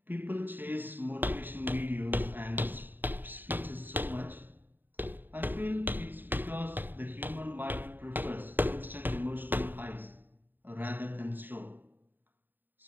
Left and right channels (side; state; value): left; late; 0.092 ms